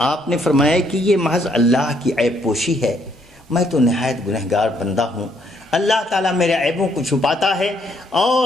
آپ نے فرمایا کہ یہ محض اللہ کی عیب پوشی ہے، میں تو نہایت گنہگار بندہ ہوں، اللہ تعالیٰ میرے عیبوں کو چھپاتا ہے،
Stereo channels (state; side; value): normal; both; correlation 0.70